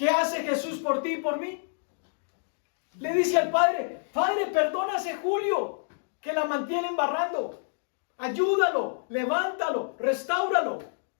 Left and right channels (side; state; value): right; silent; digital silence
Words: hace Jesús por ti y por mí? Le dice al Padre, Padre, perdona a ese Julio que la mantiene embarrando. Ayúdalo, levántalo, restáuralo.